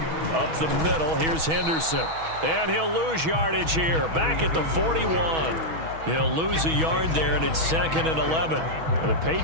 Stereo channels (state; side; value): late; left; 6.2 ms